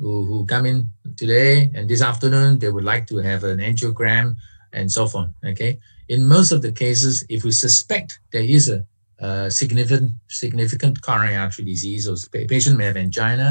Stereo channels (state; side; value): inverted; both; correlation -1.00